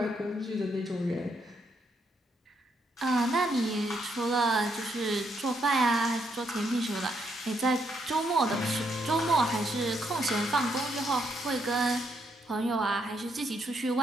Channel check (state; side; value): normal; both; correlation 0.76